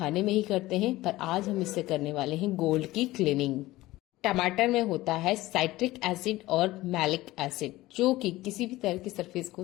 में ही करते हैं, पर आज हम इससे करने वाले हैं गोल्ड की क्लीनिंग। टमाटर में होता है साइट्रिक एसिड और मैलिक एसिड जो कि किसी भी तरह की सरफेस को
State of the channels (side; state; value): right; quieter; 17.8 dB